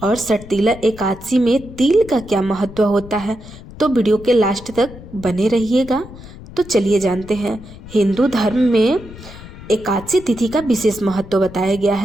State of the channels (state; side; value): noise; left; rumble, 16 dB below the sound